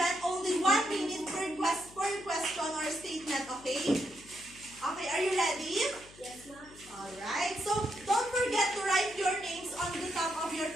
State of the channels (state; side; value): noise; left; hum, 22 dB below the sound